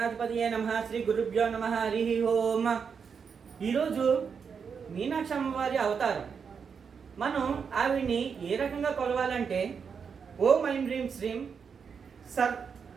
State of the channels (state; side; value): quieter; left; 6.3 dB